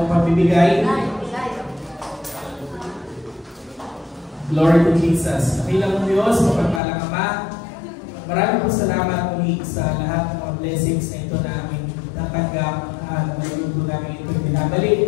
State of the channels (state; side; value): drops out; right; at 6.8 s